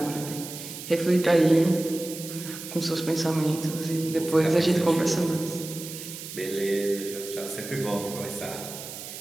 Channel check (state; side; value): noise; right; hiss, 11 dB below the sound